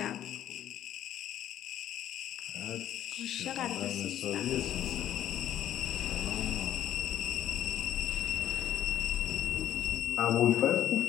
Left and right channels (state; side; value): quieter; right; 11.4 dB